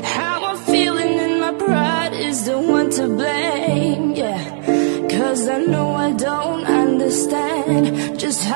How I'm feeling and my pride is the one to blame. Yeah, 'cause I know I don't understand just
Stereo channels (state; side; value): silent; left; 68 dB below the other